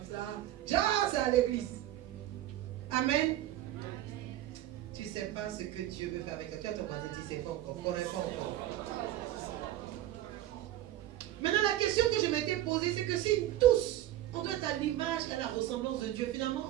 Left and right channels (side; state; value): left; quieter; 13.7 dB